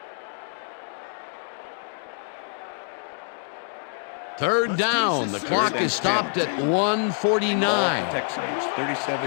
Third down. The clock is stopped at 1:49. Texans,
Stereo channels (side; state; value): right; silent; 61 dB below the other